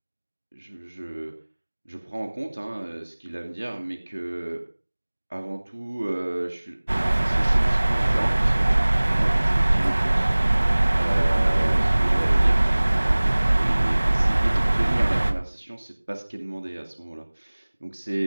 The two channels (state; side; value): inverted; both; correlation -1.00